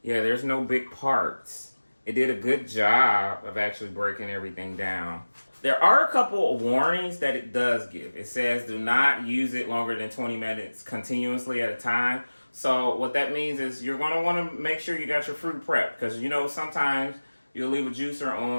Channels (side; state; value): both; inverted; correlation -1.00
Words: Yeah, there's no big parts. It did a good job of actually breaking everything down. There are a couple of warnings that it does give. It says do not use it longer than 20 minutes continuously at a time. So what that means is you're going to want to make sure you got your fruit prepped, because you know sometimes you'll leave a juicer